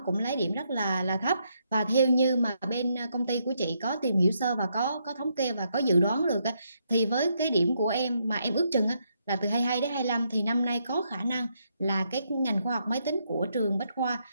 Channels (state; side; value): inverted; both; correlation -0.77